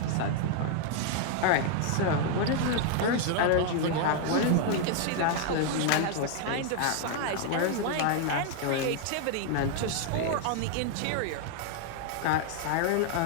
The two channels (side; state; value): both; different; correlation 0.00